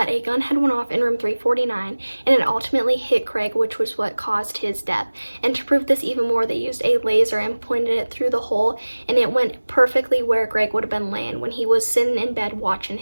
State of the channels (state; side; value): inverted; both; correlation -1.00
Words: a gun had went off in room 349 and it ultimately hit Greg, which was what caused his death. And to prove this even more, they used a laser and pointed it through the hole, and it went perfectly where Greg would have been laying when he was sitting in bed watching